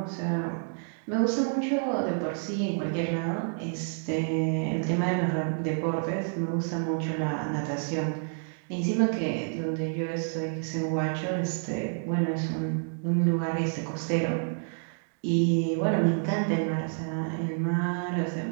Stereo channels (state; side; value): silent; left; 59 dB below the other